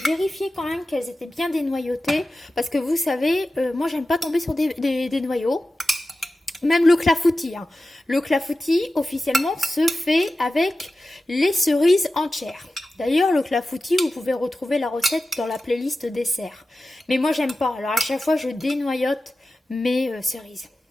vérifié quand même qu'elles étaient bien dénoyautées. Parce que vous savez, moi, j'aime pas tomber sur des noyaux. Même le clafoutis. Hein. Le clafoutis, officiellement, se fait avec les cerises entières. D'ailleurs, le clafoutis, vous pouvez retrouver la recette dans la playlist dessert. Mais moi, j'aime pas. Alors, à chaque fois, je dénoyote mes cerises.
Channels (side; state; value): both; normal; correlation 0.94